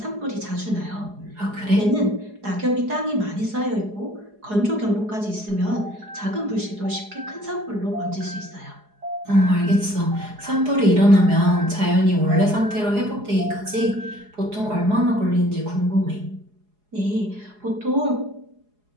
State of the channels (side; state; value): left; late; 4.8 ms